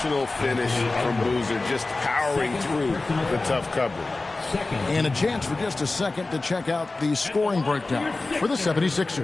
finish from Boozer, just powering through the tough coverage. And a chance for just a second to check out the scoring breakdown for the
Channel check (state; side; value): quieter; right; 3.3 dB